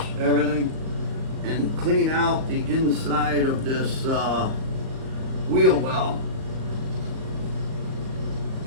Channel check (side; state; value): left; late; 38 ms